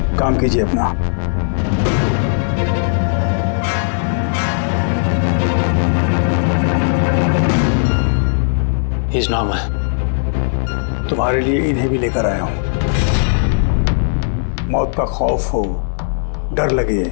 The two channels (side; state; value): right; silent; digital silence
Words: काम कीजिए अपना। He's normal. तुम्हारे लिए इन्हें भी लेकर आया हूं। मौत का खौफ हो, डर लगे